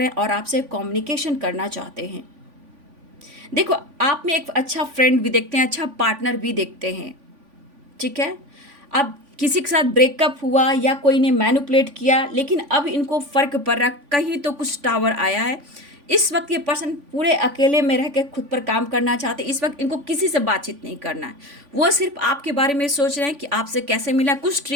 हैं और आपसे कम्युनिकेशन करना चाहते हैं। देखो, आप में एक अच्छा फ्रेंड भी देखते हैं, अच्छा पार्टनर भी देखते हैं। ठीक है, अब किसी के साथ ब्रेकअप हुआ या कोई ने मैनिपुलेट किया, लेकिन अब इनको फ़र्क पड़ रहा, कहीं तो कुछ टावर आया है। इस वक्त ये पर्सन पूरे अकेले में रह के खुद पर काम करना चाहते हैं। इस वक्त इनको किसी से बातचीत नहीं करना है, वो सिर्फ आपके बारे में सोच रहे हैं कि आपसे कैसे मिला। कुछ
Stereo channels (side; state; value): left; late; 3.5 ms